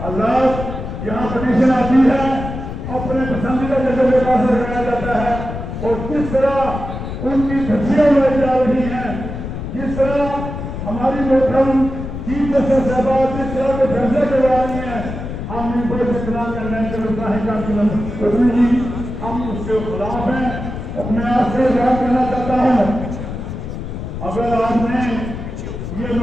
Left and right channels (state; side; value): noise; left; rumble, 7 dB below the sound